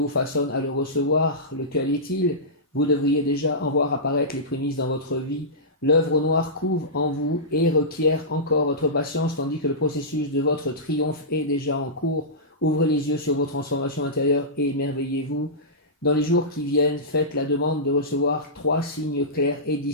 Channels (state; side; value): normal; both; correlation -0.17